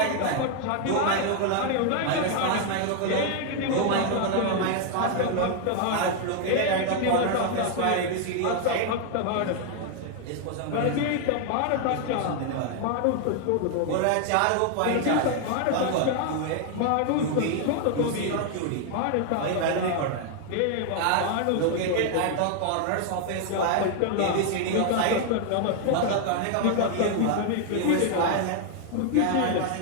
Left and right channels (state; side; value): different; both; correlation 0.00